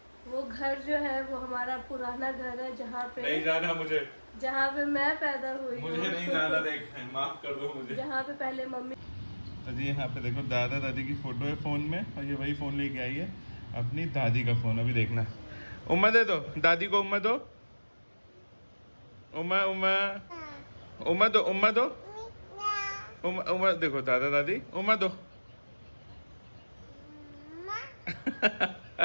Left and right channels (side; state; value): both; inverted; correlation -1.00